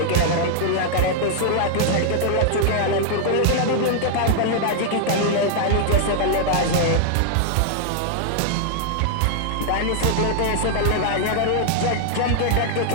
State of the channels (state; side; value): different; both; correlation -0.01